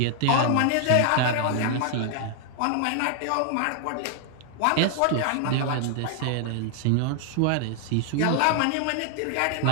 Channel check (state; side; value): different; both; correlation 0.00